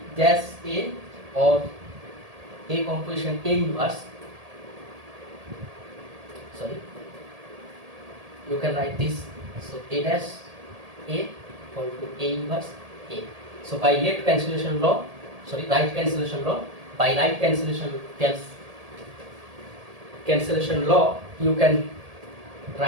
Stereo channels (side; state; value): left; late; 1.8 ms